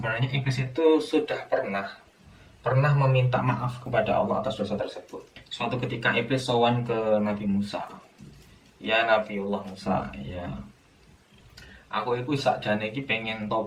iblis itu sudah pernah meminta maaf kepada Allah atas dosa tersebut. Suatu ketika iblis sowan ke Nabi Musa. Ya Nabiullah Musa, ya, aku itu sakjane iki pengen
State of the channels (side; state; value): both; identical; correlation 1.00